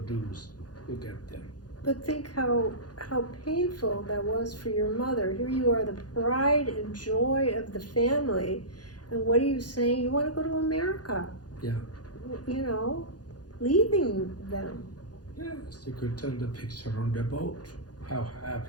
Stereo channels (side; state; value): right; late; 0.69 ms